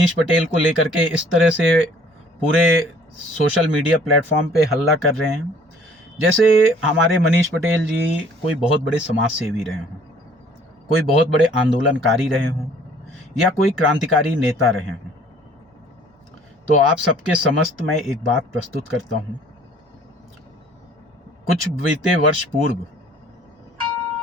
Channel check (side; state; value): both; normal; correlation 0.55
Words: पटेल को लेकर के इस तरह से पूरे सोशल मीडिया प्लेटफॉर्म पे हल्ला कर रहे हैं जैसे हमारे मनीष पटेल जी कोई बहुत बड़े समाज सेवी रहे हों, कोई बहुत बड़े आंदोलनकारी रहे हों या कोई क्रांतिकारी नेता रहे हों। तो आप सबके समस्त मैं एक बात प्रस्तुत करता हूं। कुछ बीते वर्ष पूर्व